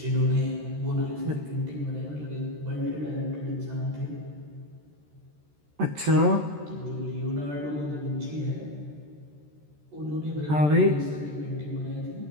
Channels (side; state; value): left; late; 13 ms